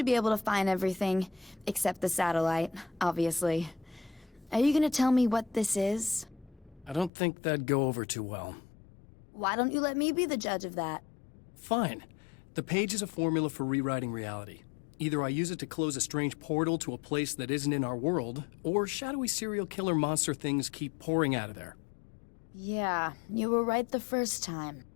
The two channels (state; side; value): drops out; right; at 7.1 s